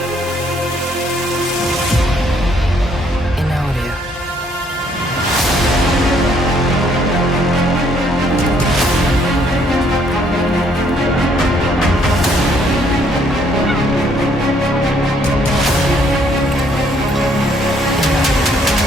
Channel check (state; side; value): normal; both; correlation 0.67